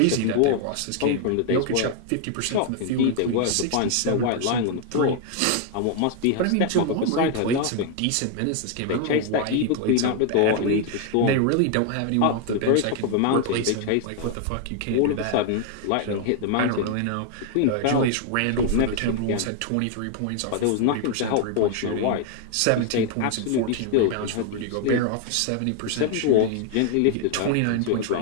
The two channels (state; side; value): different; both; correlation 0.00